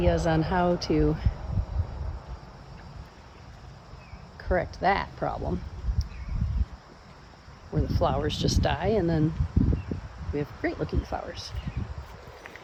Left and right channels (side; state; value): both; identical; correlation 1.00